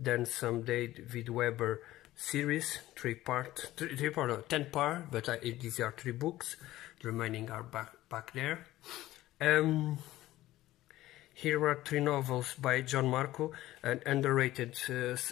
some David Weber series, 10-part, but these are 3 books. The remaining are back there. Here are 3 novels by John Marco, an underrated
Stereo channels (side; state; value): right; quieter; 15.7 dB